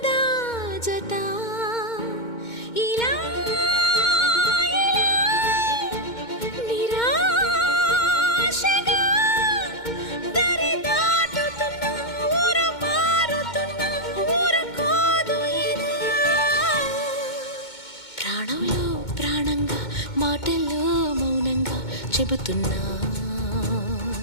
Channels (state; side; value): late; right; 2.2 ms